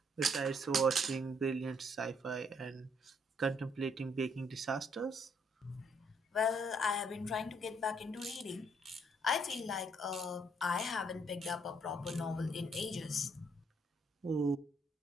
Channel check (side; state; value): both; normal; correlation 0.69